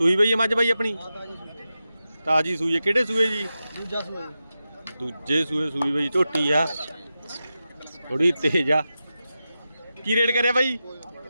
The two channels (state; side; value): inverted; both; correlation -0.91